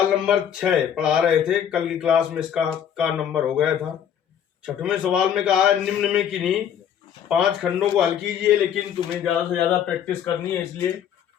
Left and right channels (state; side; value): quieter; right; 9.0 dB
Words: नंबर 6 पढ़ा रहे थे। कल की क्लास में इसका का नंबर हो गया था। 6वें सवाल में कहा है निम्न में किन्हीं 5 खंडों को हल कीजिए, लेकिन तुम्हें ज्यादा से ज्यादा प्रैक्टिस करनी है, इसलिए